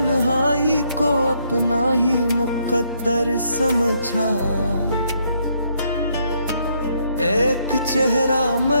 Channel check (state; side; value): inverted; both; correlation -0.72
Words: को अपना ही मुकद्दर समझा, एक चेहरा